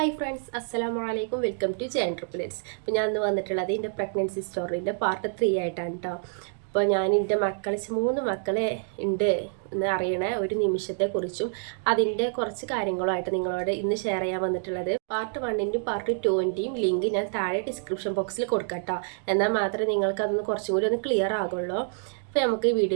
ഫ്രണ്ട്സ്, അസ്സലാമു അലൈക്കും. Welcome to J enterprise. അപ്പോൾ ഞാൻ ഇന്ന് വന്നിട്ടുള്ളത് എൻ്റെ പ്രഗ്നൻസി സ്റ്റോറിൻ്റെ പാർട്ട് 3 ആയിട്ടാണ് കേട്ടോ. അപ്പോൾ ഞാൻ എൻ്റെ മക്കളെ 3 മക്കളെ ഉണ്ട് എന്ന് അറിയണ ഒരു നിമിഷത്തെക്കുറിച്ചും അതിൻ്റെ കുറച്ച് കാര്യങ്ങളുമായിട്ട് നിങ്ങളോട് ഇന്ന് ഷെയർ ചെയ്യാൻ വന്നിട്ടുള്ളത്. പാർട്ട് 1ൻ്റെയും പാർട്ട് 2ൻ്റെയും ലിങ്ക് ഞാൻ താഴെ ഡിസ്ക്രിപ്ഷൻ ബോക്സിൽ കൊടുക്കാം കേട്ടോ. എന്നാൽ മാത്രമേ നിങ്ങൾക്ക് അതൊന്ന് കുറച്ചും കൂടി ഒന്ന് ക്ലിയർ ആകുള്ളൂ. അപ്പോൾ നമുക്ക് ഈ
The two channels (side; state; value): left; silent; digital silence